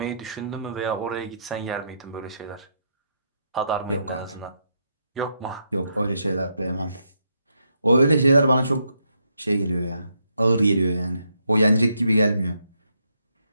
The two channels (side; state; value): both; inverted; correlation -0.78